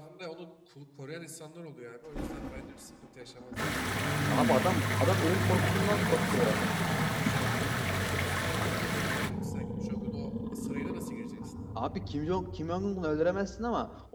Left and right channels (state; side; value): identical; both; correlation 1.00